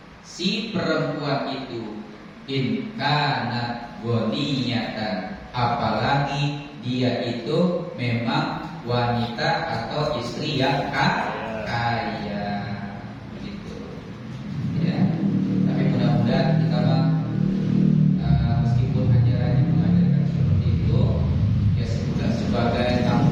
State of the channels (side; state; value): both; identical; correlation 1.00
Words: si perempuan itu, in kana ghaniyatan, apalagi dia itu memang wanita atau istri yang kaya, gitu. Ya, tapi mudah-mudahan kita meskipun ajarannya mengajarkan seperti itu, ya sebagai